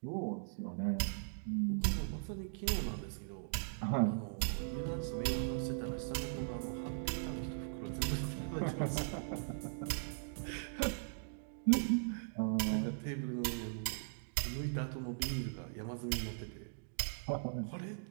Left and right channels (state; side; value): silent; left; digital silence